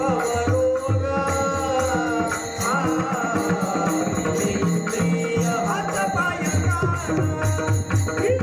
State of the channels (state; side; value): identical; both; correlation 1.00